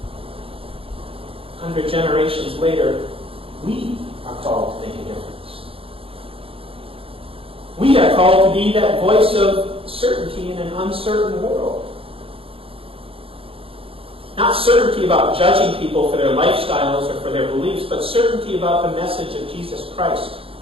100 generations later, we are called to make a difference. We are called to be that voice of certainty in an uncertain world. Not certainty about judging people for their lifestyles or for their beliefs, but certainty about the message of Jesus Christ.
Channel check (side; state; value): left; late; 0.27 ms